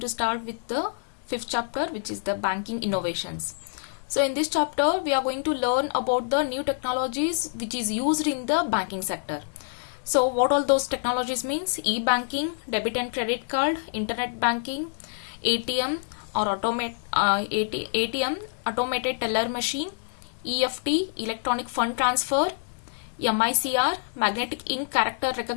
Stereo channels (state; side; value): silent; right; digital silence